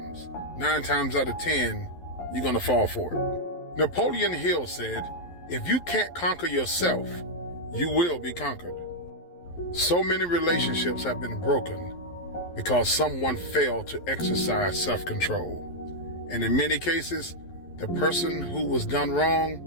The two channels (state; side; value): late; right; 11 ms